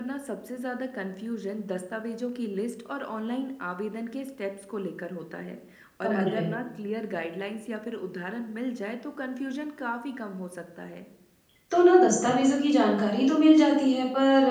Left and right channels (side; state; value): both; identical; correlation 1.00